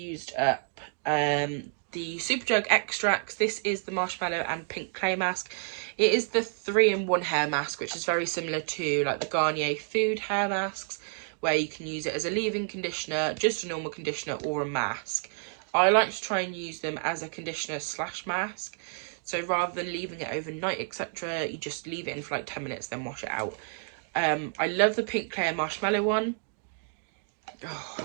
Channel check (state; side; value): silent; left; 58 dB below the other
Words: up the Superdrug Extracts. This is the marshmallow and pink clay mask. It is the 3-in-1 hair mask, which is very similar to like the Garnier Food hair masks, where you can use it as a leave-in conditioner, just a normal conditioner, or a mask. I like to try and use them as a conditioner / mask. So rather than leaving it overnight, etc., you just leave it in for like 10 minutes, then wash it out. I love the pink clay marshmallow one. Oh,